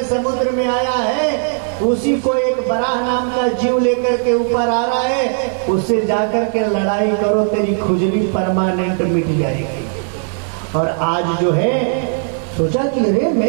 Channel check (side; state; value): left; silent; 57 dB below the other